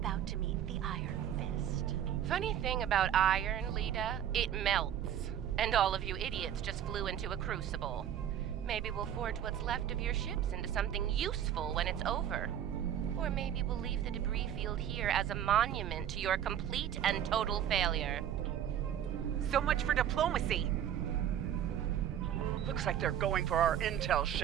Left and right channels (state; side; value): quieter; left; 10.0 dB